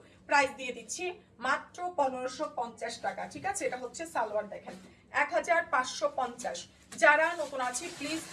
প্রাইস দিয়ে দিচ্ছি মাত্র 1550 টাকা। ঠিক আছে, এটা হচ্ছে সালোয়ার। দেখেন 1550। যারা নতুন আছে প্লিজ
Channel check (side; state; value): both; identical; correlation 1.00